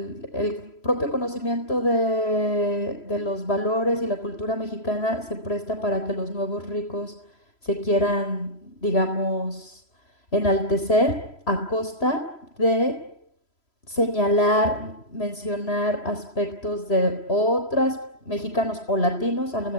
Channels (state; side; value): late; right; 3.0 ms